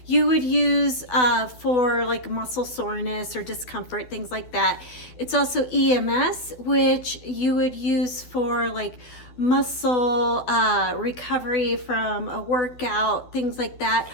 you would use for like muscle soreness or discomfort, things like that. It's also EMS, which you would use for like muscle recovery from a workout, things like that.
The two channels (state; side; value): late; right; 12 ms